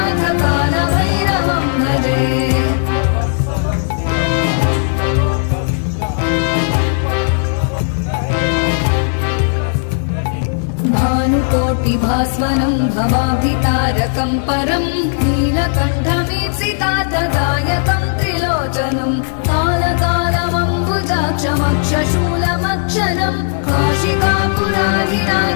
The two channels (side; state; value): right; silent; digital silence